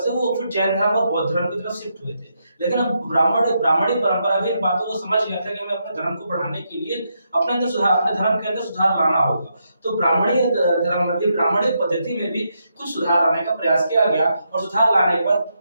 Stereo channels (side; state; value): both; inverted; correlation -0.81